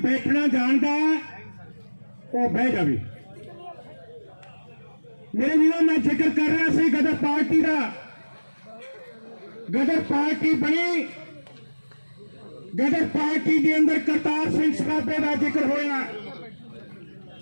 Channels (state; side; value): inverted; both; correlation -1.00